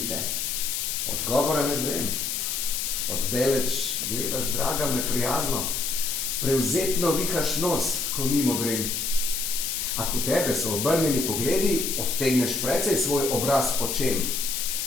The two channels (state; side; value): noise; left; hiss, 1 dB below the sound